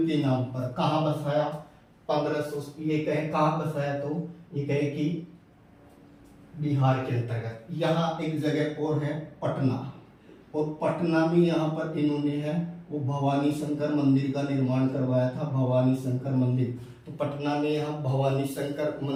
के नाम पर। कहाँ बसाया, 1500 ये कहे कहाँ बसाया, तो ये कहे कि बिहार के अंतर्गत। यहाँ एक जगह और है पटना, और पटना में यहाँ पर इन्होंने है वो भवानी शंकर मंदिर का निर्माण करवाया था। भवानी शंकर मंदिर, तो पटना में यहाँ भवानी शंकर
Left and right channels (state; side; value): identical; both; correlation 1.00